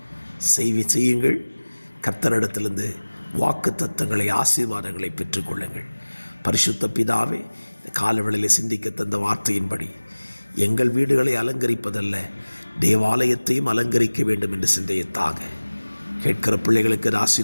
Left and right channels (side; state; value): both; inverted; correlation -1.00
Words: செய்யுங்கள். கர்த்தரிடத்திலிருந்து வாக்குத்தத்தங்களை, ஆசீர்வாதங்களை பெற்றுக்கொள்ளுங்கள். பரிசுத்த பிதாவே, காலவெளியில் சிந்திக்க தந்த வார்த்தையின்படி எங்கள் வீடுகளை அலங்கரிப்பதல்ல, தேவாலயத்தையும் அலங்கரிக்க வேண்டும் என்று சிந்தையத்தாக கேட்கிற பிள்ளைகளுக்கு